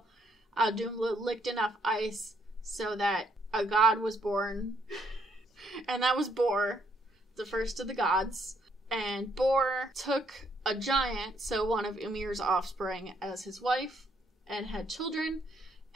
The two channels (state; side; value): normal; both; correlation 0.71